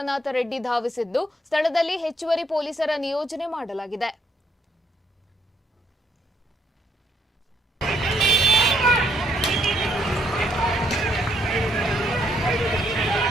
ರೆಡ್ಡಿ ಧಾವಿಸಿದ್ದು, ಸ್ಥಳದಲ್ಲಿ ಹೆಚ್ಚುವರಿ ಪೊಲೀಸರ ನಿಯೋಜನೆ ಮಾಡಲಾಗಿದೆ.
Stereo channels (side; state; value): both; normal; correlation 0.71